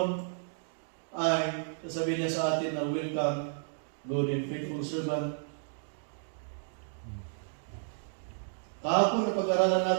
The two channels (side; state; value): left; silent; digital silence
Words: ay sasabihin niya sa atin na welcome, good and faithful servant. Kahapon na pag-aralan